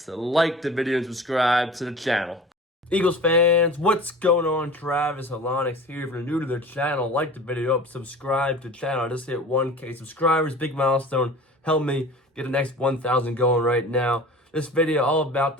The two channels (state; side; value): normal; both; correlation 0.40